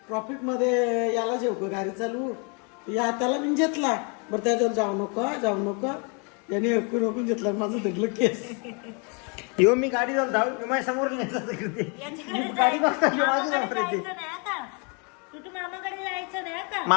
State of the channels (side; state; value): right; quieter; 34.9 dB